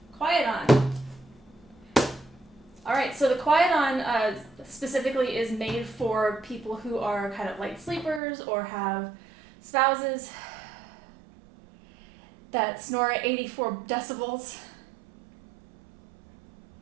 QuietOn. Alright, so the QuietOn specifically is made for people who are kind of light sleepers or have spouses that snore at 84 decibels,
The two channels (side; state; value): left; drops out; at 8.2 s